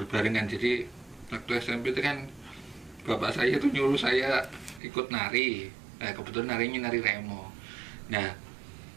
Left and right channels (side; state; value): left; drops out; at 4.8 s